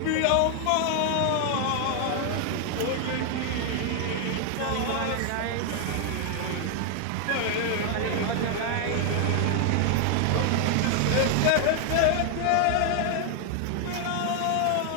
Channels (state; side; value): different; both; correlation 0.00